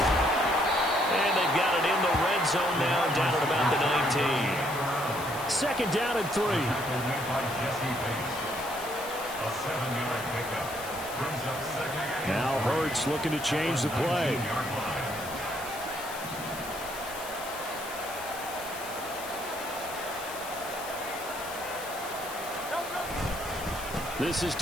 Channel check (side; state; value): left; noise; hiss, 12 dB below the sound